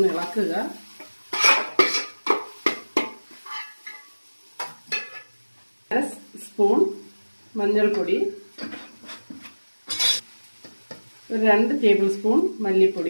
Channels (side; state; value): both; inverted; correlation -1.00